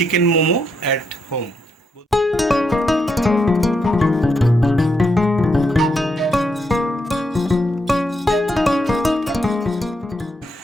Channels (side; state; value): both; normal; correlation 0.79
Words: momo at home.